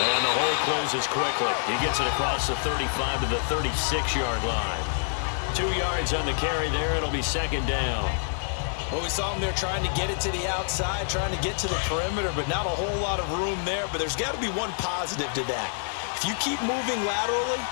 the hole closes quickly. He gets it across the 35 to the 36-yard line. 2 yards on the carry there. It'll be second down. Well, we saw him there trying to get it to the outside, trying to get to the perimeter, but not a whole lot of room there. But there's got to be one positive to that. If you keep moving laterally,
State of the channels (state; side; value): silent; right; 60 dB below the other